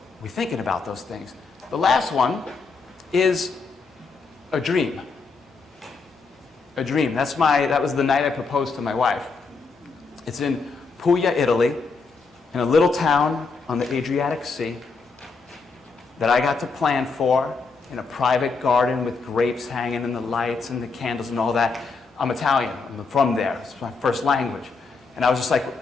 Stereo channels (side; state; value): right; quieter; 4.5 dB